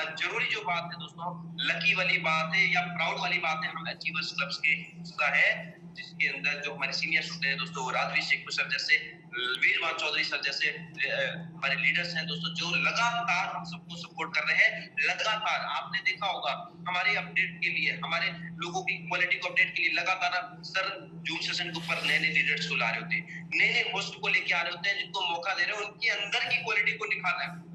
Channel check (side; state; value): both; identical; correlation 1.00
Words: जरूरी जो बात है दोस्तों, लकी वाली बात है या प्राउड वाली बात है, हम अचीवर्स क्लब्स के हिस्सा है, जिसके अंदर जो हमारे सीनियर्स होते हैं दोस्तों, राजवीर शेख सर जैसे, वीरवान चौधरी सर जैसे हमारे लीडर्स हैं दोस्तों, जो लगातार हम सबको सपोर्ट कर रहे हैं। लगातार आपने देखा होगा हमारे अपडेट के लिए, हमारे लोगों की क्वालिटी को अपडेट के लिए लगातार सर जूम सेशन के ऊपर नए नए लीडर्स को ला रहे होते हैं, नए नए होस्ट को लेके आ रहे होते हैं, जिनको मौका दे रहे हैं उनके अंदर की क्वालिटी को निखारना